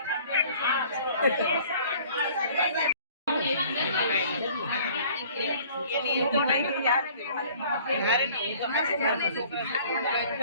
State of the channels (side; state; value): both; inverted; correlation -0.52